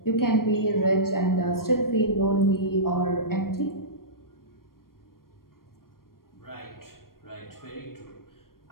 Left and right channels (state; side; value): late; right; 0.92 ms